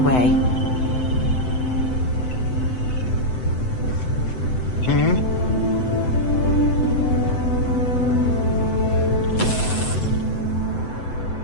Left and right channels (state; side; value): late; right; 7.9 ms